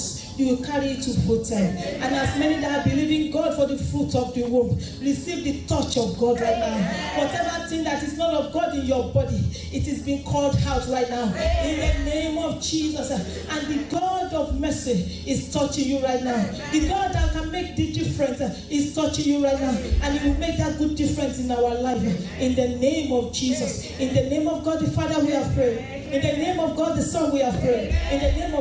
you will carry it to full time. And as many that are believing God for the fruit of the womb, receive the touch of God right now. Whatever thing that is not of God in your body, it is being called out right now. In the name of Jesus. And the God of mercy is touching you right now. The God that can make the difference is touching you right now. And He will make that good difference in our life. In the name of Jesus. In the name of God the Father we have prayed. In the name of God the Son we have prayed. In the name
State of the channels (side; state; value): both; identical; correlation 1.00